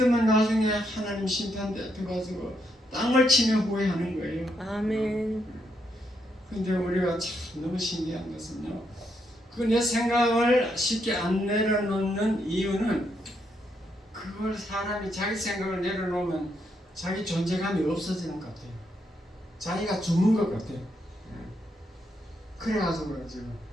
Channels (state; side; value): normal; both; correlation 0.78